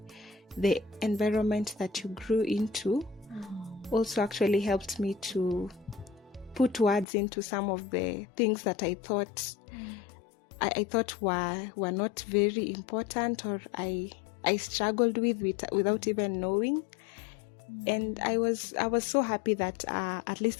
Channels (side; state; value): right; drops out; at 7.1 s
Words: the environment that you grew into, also actually helped me to put words into some of the things that I thought I thought were not very important, or I struggled with without even knowing. And I was so happy that at